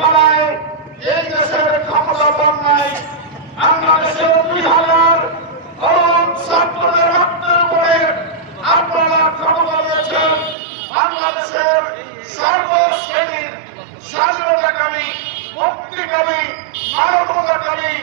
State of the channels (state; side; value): drops out; left; at 10.6 s